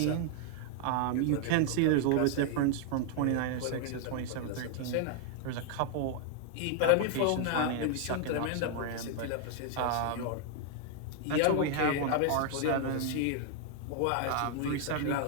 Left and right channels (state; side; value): different; both; correlation 0.00